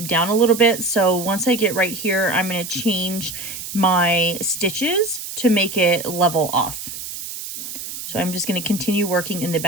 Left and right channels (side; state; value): right; noise; hiss, 9 dB below the sound